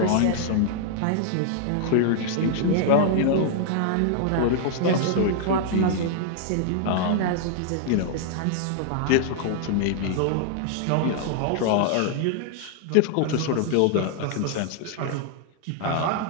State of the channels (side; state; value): both; different; correlation 0.00